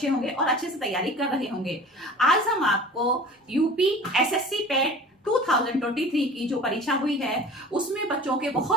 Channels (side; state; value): both; normal; correlation 0.41